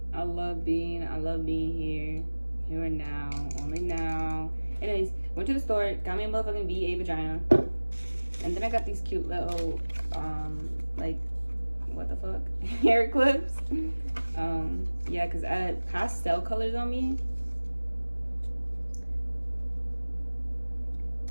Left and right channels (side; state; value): both; inverted; correlation -1.00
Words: I love being here and now, only now. Anyways, went to the store, got me a motherfucking VA vagina. And then I got these cute little, like, what the fuck? Hair clips. Yeah, because I had pastel colors on me.